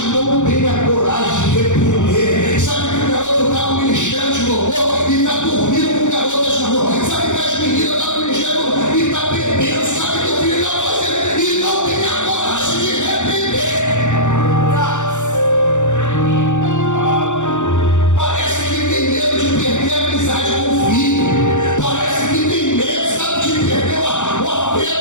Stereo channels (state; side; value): late; right; 0.85 ms